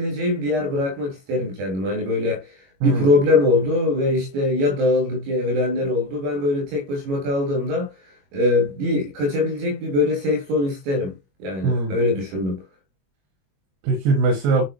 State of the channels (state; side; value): late; left; 21 ms